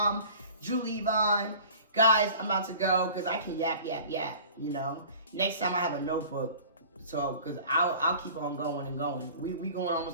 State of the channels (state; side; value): inverted; both; correlation -0.44